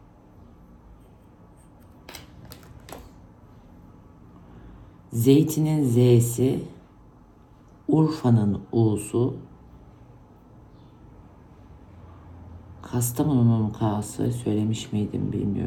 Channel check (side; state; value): both; identical; correlation 1.00